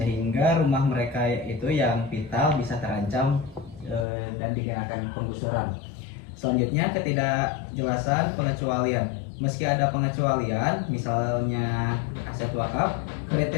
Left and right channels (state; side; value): drops out; right; at 4.0 s